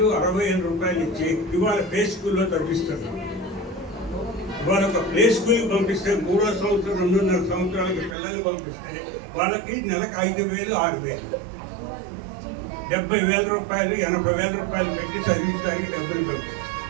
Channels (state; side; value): drops out; left; at 8.2 s